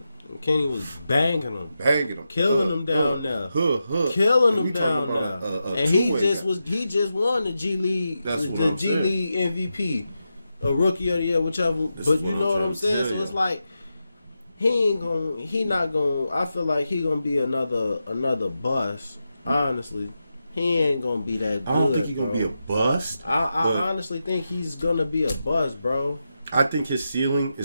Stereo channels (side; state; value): both; inverted; correlation -0.89